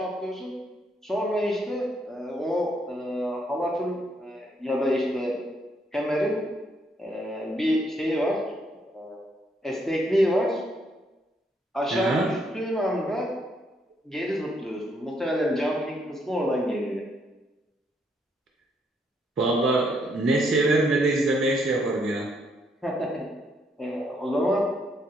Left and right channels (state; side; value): normal; both; correlation 0.73